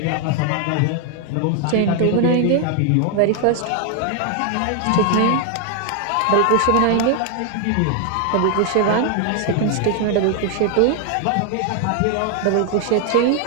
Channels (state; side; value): different; both; correlation 0.00